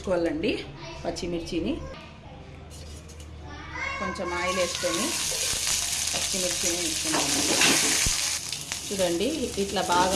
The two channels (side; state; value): both; identical; correlation 1.00